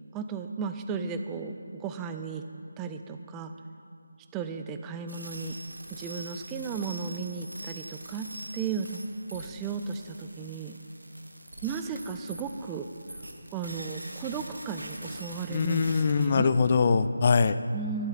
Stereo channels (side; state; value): both; inverted; correlation -0.69